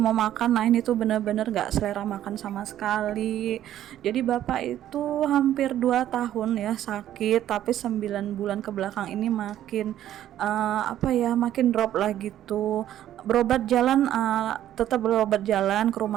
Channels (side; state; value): left; quieter; 11.9 dB